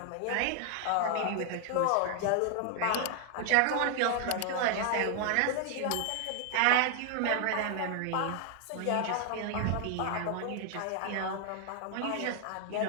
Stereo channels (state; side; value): different; both; correlation 0.00